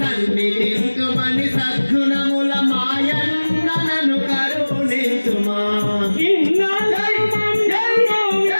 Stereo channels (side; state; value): both; inverted; correlation -1.00